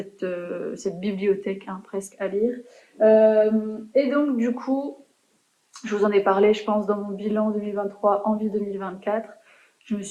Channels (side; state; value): both; identical; correlation 1.00